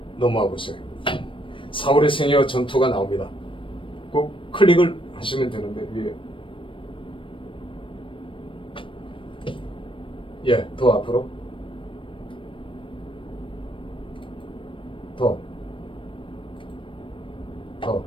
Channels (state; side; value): late; right; 0.25 ms